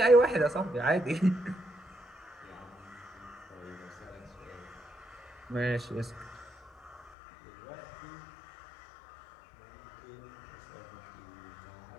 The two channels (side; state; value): right; drops out; at 7.1 s